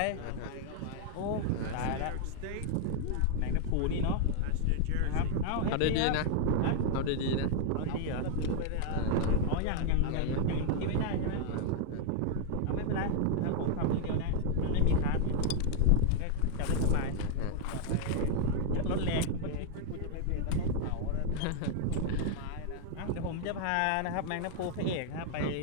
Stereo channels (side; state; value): both; different; correlation 0.00